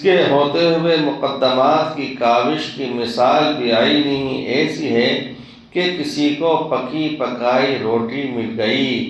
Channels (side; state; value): both; identical; correlation 1.00